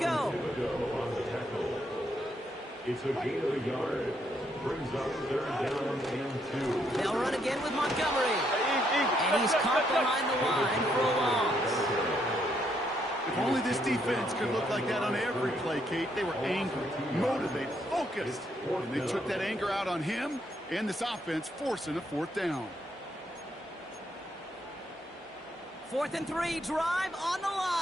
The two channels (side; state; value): both; normal; correlation 0.74